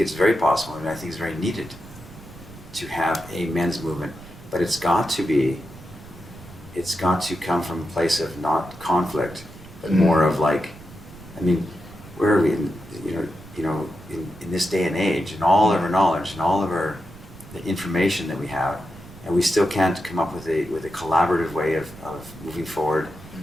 very possible, and I think it's very needed to have a men's movement, but it's got to come from a place of not conflict, but more of where are we in this day and age, and all of our knowledge and all of the information that we have, and we still can't come up with a collaborative way of moving forward,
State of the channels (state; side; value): noise; right; rumble, 18 dB below the sound